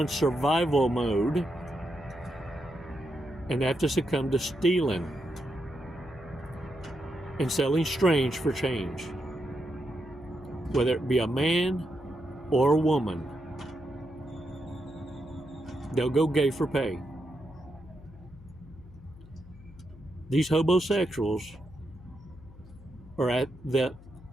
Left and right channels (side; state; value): left; noise; hum, 20 dB below the sound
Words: survival mode and have to succumb to stealing and selling strange for change, whether it be a man or a woman. They'll go gay for pay. These homosexuals are at the